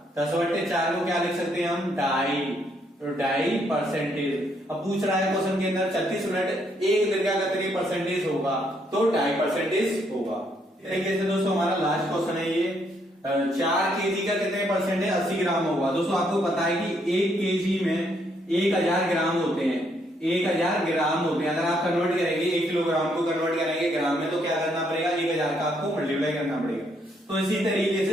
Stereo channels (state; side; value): normal; both; correlation 0.72